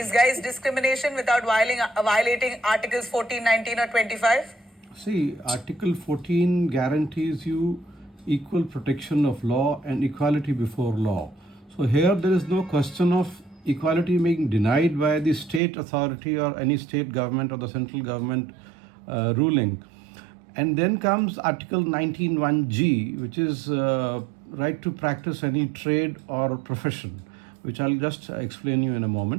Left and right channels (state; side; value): drops out; left; at 15.6 s